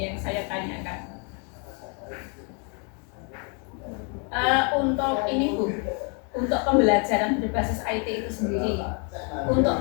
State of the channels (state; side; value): quieter; right; 37.2 dB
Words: yang saya tanyakan. Untuk ini Bu, untuk pembelajaran berbasis IT itu sendiri, untuk